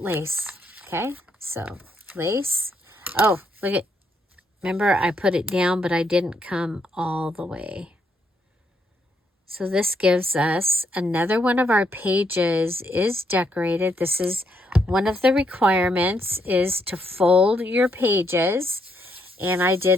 lace. Okay, so lace. Oh, look at. Remember, I put it down, but I didn't come all the way. So this gives us another one of our pages is decorated. This is one of the requirements is to fold your pages. And I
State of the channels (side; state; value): both; normal; correlation 0.75